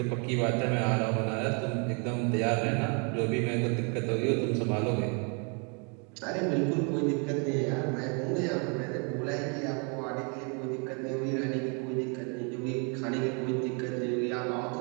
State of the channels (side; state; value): left; quieter; 36.0 dB